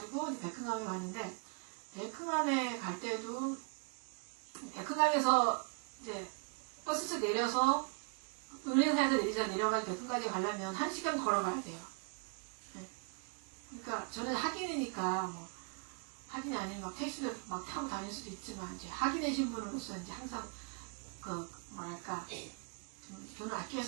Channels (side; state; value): left; quieter; 38.1 dB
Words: 백흥암에 가는데 백흥암에 갈 때도 백흥암에서 이제 버스에서 내려서 은행사에서 내려가지고 백흥까지 가려면 1시간 걸어가야 돼요. 네. 그러니까 저는 학인이니까 뭐 학인이 아닌 막 택시도 막 타고 다닐 수도 있지만 이제 학인의 신분으로서 이제 항상 그 뭐랄까 좀 돈을 아껴